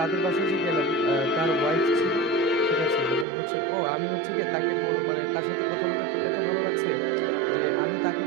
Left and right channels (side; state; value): left; drops out; at 3.2 s